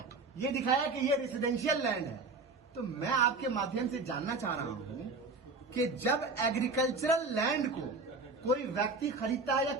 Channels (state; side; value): quieter; left; 3.7 dB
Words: ये दिखाया कि ये रेसिडेंशियल लैंड है। तो मैं आपके माध्यम से जानना चाह रहा हूं कि जब एग्रीकल्चरल लैंड को कोई व्यक्ति खरीदता है या